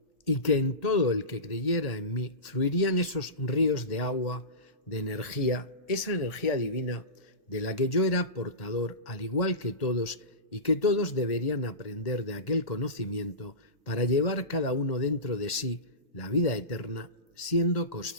y que en todo el que creyera en mí fluirían esos ríos de agua, de energía, esa energía divina de la que yo era portador, al igual que todos, y que todos deberían aprender de aquel conocimiento para llevar cada uno dentro de sí la vida eterna, siendo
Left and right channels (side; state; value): right; late; 1.4 ms